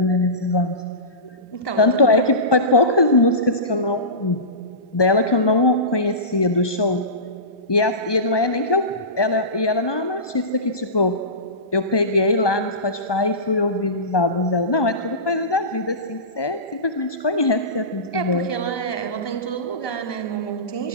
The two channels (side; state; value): right; late; 1.2 ms